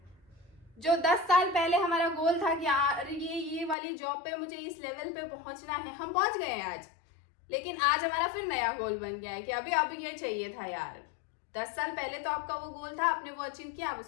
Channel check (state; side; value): drops out; right; at 3.8 s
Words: जो 10 साल पहले हमारा गोल था कि यार ये वाली जॉब पे मुझे इस लेवल पे पहुंचना है, हम पहुंच गए हैं आज। लेकिन आज हमारा फिर नया गोल बन गया है कि अभी अब ये चाहिए था यार। 10 साल पहले तो आपका वो गोल था, आपने वो अचीव किया, आप